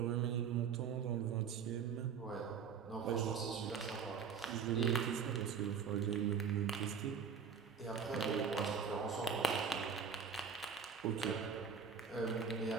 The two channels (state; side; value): quieter; left; 6.3 dB